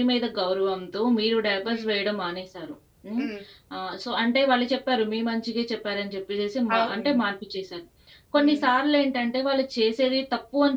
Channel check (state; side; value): identical; both; correlation 1.00